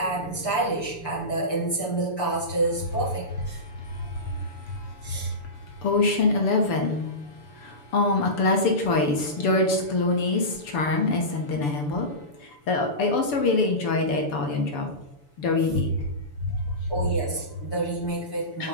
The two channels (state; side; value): late; right; 6.9 ms